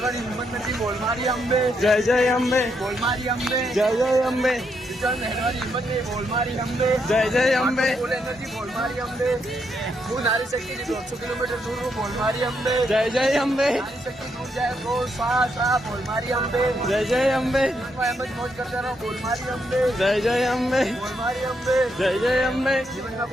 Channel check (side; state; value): both; normal; correlation 0.78